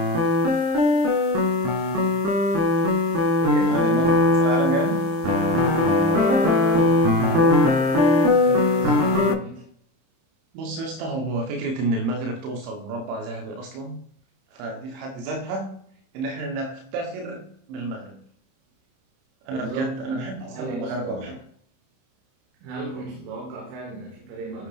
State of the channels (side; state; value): left; late; 31 ms